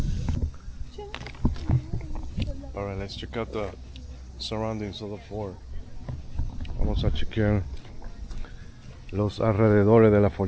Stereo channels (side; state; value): both; identical; correlation 1.00